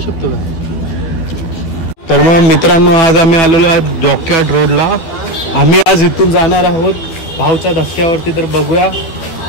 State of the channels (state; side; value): late; right; 12 ms